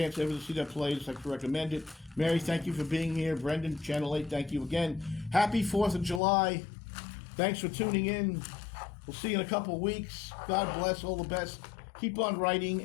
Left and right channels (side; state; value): right; drops out; at 6.2 s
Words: ever to see that play, I'd like to recommend it. Mary, thank you for being here. Brendan, Channel 8, thank you again. Happy 4th of July. Thanks for tuning in. We'll see you in a couple of weeks. God bless. All the best. Keep on